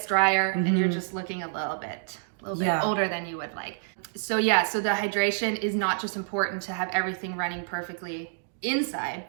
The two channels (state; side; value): silent; left; digital silence